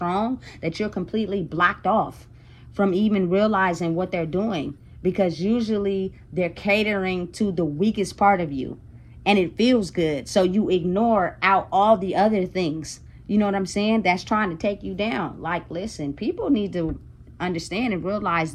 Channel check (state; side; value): identical; both; correlation 1.00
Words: that you're completely blocked off from even realizing what they're doing, because usually they're catering to the weakest part of you and it feels good, so you ignore out all the other things, you know what I'm saying, that's trying to take you down. Like listen, people need to understand and realize